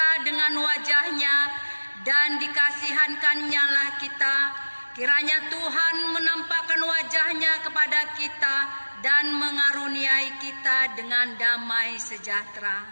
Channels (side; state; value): both; inverted; correlation -1.00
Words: dengan wajah-Nya dan dikasihankan-Nya lah kita. Kiranya Tuhan menampakkan wajah-Nya kepada kita dan mengaruniai kita dengan damai